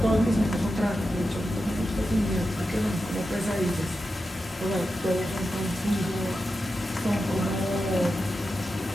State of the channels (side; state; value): both; normal; correlation 0.90